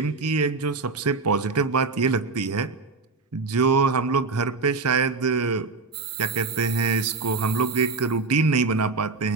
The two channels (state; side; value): quieter; left; 4.1 dB